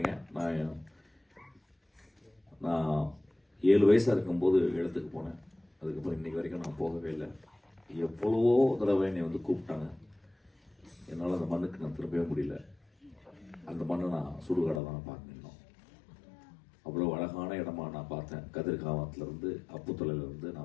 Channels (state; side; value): drops out; right; at 14.8 s